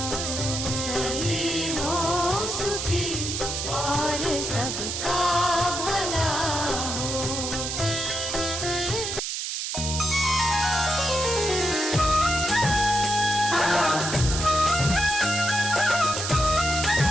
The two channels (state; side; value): noise; right; hiss, 3 dB below the sound